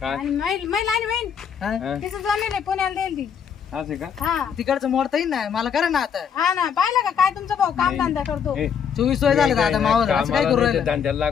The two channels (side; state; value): right; quieter; 7.5 dB